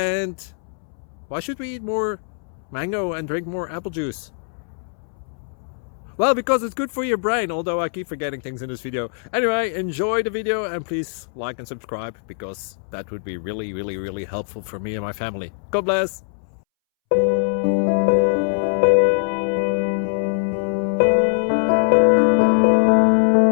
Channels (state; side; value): silent; right; 64 dB below the other